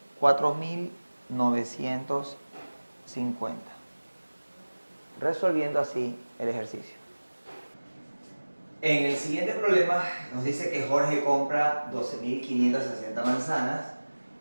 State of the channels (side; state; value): both; inverted; correlation -1.00